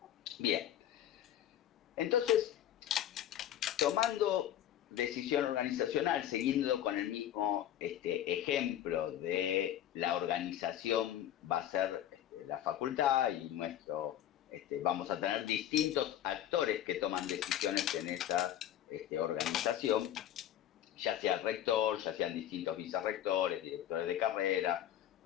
Bien, entonces, tomando decisión organizacional, siguiendo con el mismo ejemplo de la organización, va a ser la facultad y vamos a tener distintos actores que toman decisiones en esa organización, ya sea el rector, ya sean distintos vicerrectores, directores de carrera,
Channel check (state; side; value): quieter; right; 11.5 dB